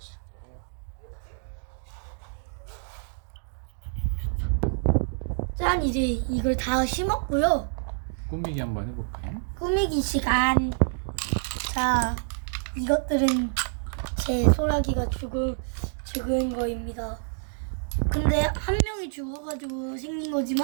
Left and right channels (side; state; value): left; silent; digital silence